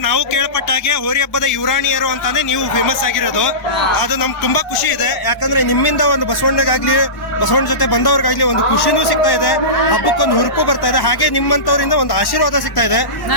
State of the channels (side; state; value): right; late; 1.1 ms